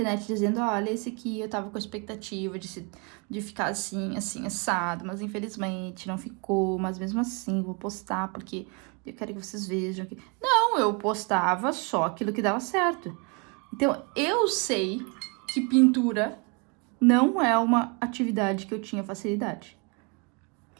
dizendo, olha, esse aqui eu tava com a expectativa de ficar assim, assado, mas infelizmente não ficou, mas mesmo assim vou postar porque eu quero que vocês vejam. Não, eu postava só aquilo que dava certo. Então, eu sei que pintura não é uma atividade que eu tinha facilidade.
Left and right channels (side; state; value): left; quieter; 33.3 dB